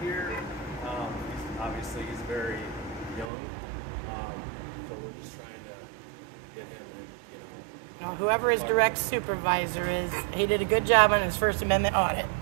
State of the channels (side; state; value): left; drops out; at 3.3 s